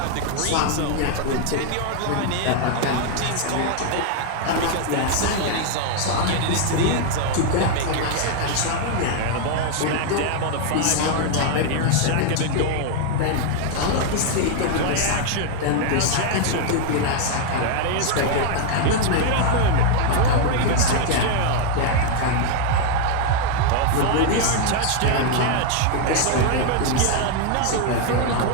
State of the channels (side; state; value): both; different; correlation 0.00